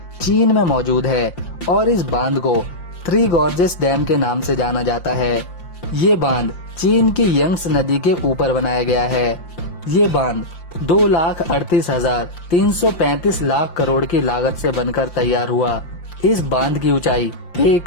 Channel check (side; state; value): right; late; 5.7 ms